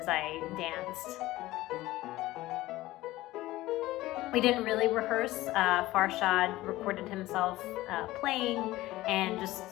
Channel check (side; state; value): right; quieter; 17.2 dB